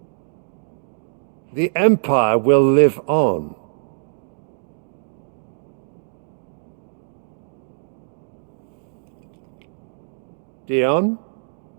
The Empire will live on. Dion?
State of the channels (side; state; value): left; silent; digital silence